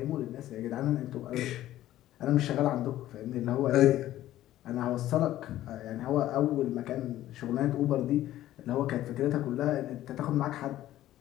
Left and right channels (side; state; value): right; quieter; 13.9 dB